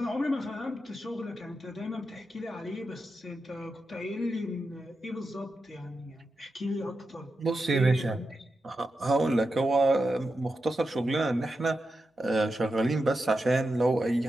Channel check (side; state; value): both; normal; correlation 0.89